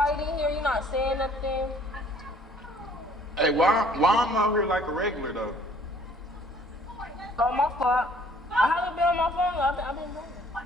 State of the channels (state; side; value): normal; both; correlation 0.58